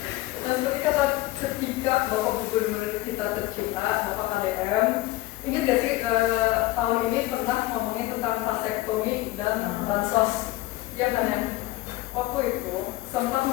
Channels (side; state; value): right; quieter; 18.3 dB